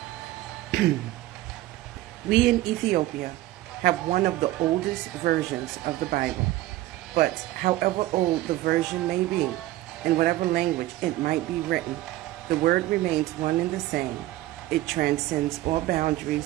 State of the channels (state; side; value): quieter; left; 16.3 dB